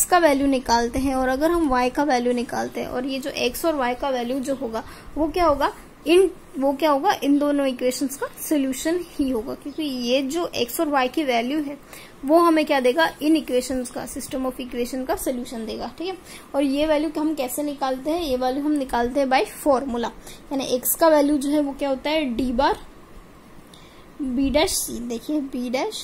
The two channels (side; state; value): both; identical; correlation 1.00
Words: का वैल्यू निकालते हैं और अगर हम y का वैल्यू निकालते हैं, और ये जो x और y का वैल्यू जो होगा वो क्या होगा, इन दोनों इक्वेशंस का सोल्यूशन ही होगा, क्योंकि ये जो x और y की वैल्यू है वो हमें क्या देगा, इन इक्वेशंस का, सिस्टम ऑफ इक्वेशन का सोल्यूशन देगा। ठीक है, और ये वैल्यू हम कैसे निकालते हैं, ये वैल्यू हम निकालते हैं बाय फॉर्मूला, यानी x का वैल्यू जो है वो क्या होता है, d bar b dash c, देखिए b